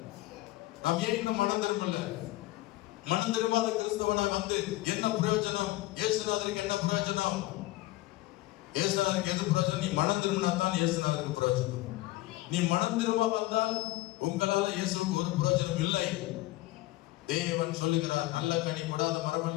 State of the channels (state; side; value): quieter; right; 18.3 dB